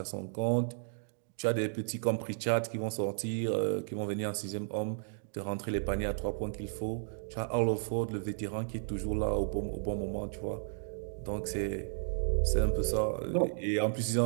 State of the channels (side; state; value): left; silent; digital silence